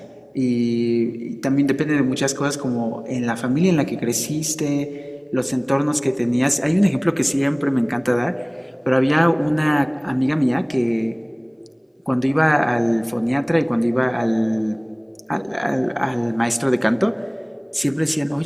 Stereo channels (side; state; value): both; identical; correlation 1.00